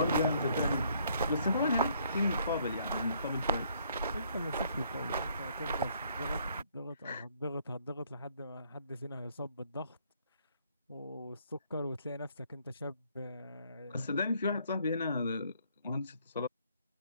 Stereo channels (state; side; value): inverted; both; correlation -0.66